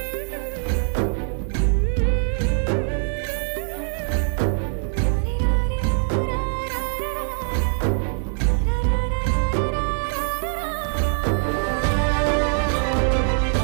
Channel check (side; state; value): left; silent; 59 dB below the other